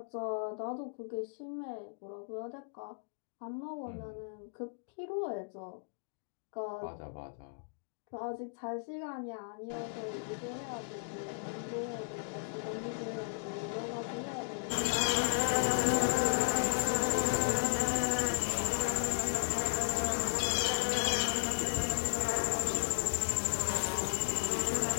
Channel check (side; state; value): right; silent; digital silence